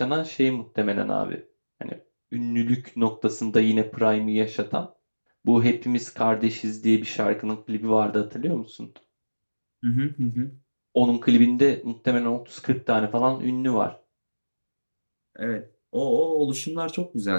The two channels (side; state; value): both; inverted; correlation -1.00